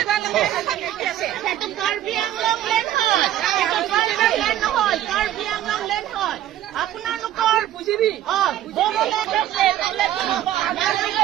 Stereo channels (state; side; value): quieter; left; 12.3 dB